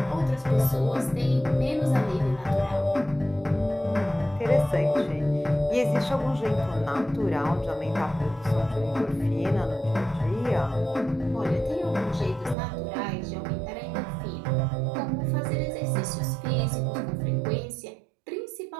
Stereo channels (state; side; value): drops out; left; at 12.6 s